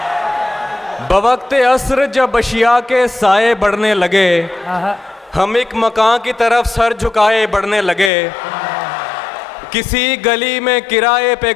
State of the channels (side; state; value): right; drops out; at 8.1 s